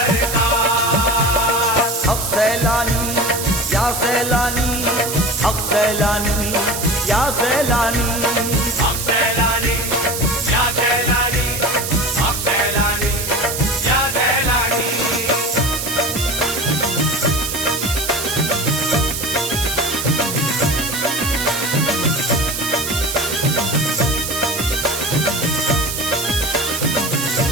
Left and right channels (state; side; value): noise; right; hiss, 4 dB below the sound